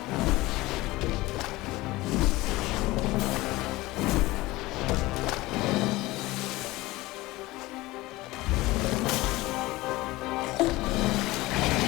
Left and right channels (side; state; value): right; quieter; 19.7 dB